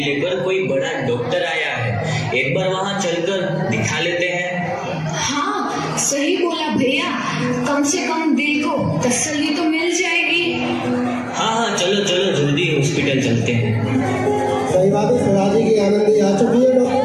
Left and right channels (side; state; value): both; identical; correlation 1.00